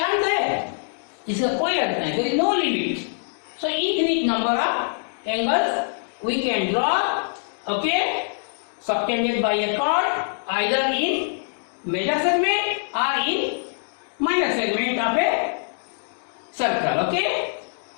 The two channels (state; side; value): silent; right; digital silence